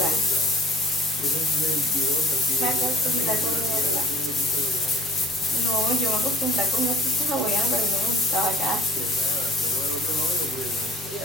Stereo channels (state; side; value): normal; both; correlation 0.51